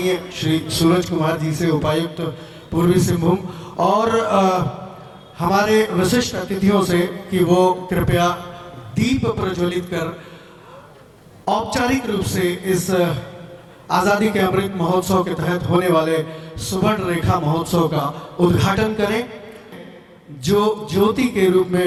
श्री सूरज कुमार जी से, उपायुक्त पूर्वी सिंहभूम, और हमारे विशिष्ट अतिथियों से कि वो कृपया दीप प्रज्वलित कर औपचारिक रूप से इस आज़ादी के अमृत महोत्सव के तहत होने वाले सुवर्ण रेखा महोत्सव का उद्घाटन करें, जो ज्योति के रूप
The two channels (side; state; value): both; identical; correlation 1.00